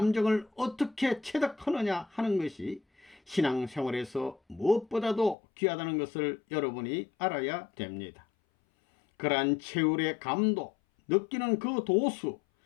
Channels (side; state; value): right; drops out; at 5.4 s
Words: 어떻게 체득하느냐 하는 것이 신앙생활에서 무엇보다도 귀하다는 것을 여러분이 알아야 됩니다. 그러한 체율의 감도, 느끼는 그 도수,